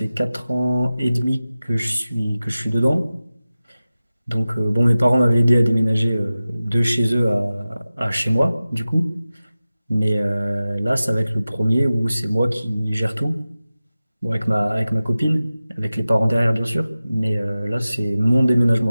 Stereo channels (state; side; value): inverted; both; correlation -0.96